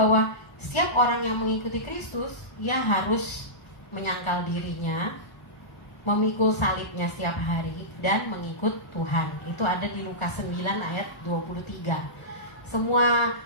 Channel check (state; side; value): late; right; 1.3 ms